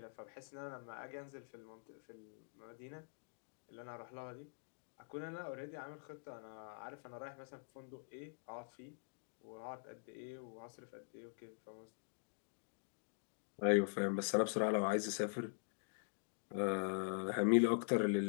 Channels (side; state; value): right; silent; digital silence